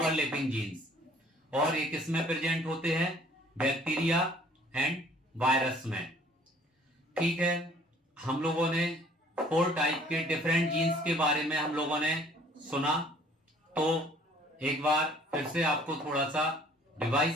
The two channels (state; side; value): normal; both; correlation 0.56